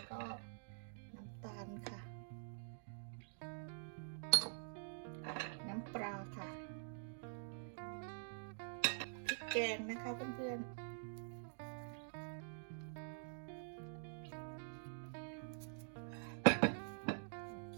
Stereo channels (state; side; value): silent; left; digital silence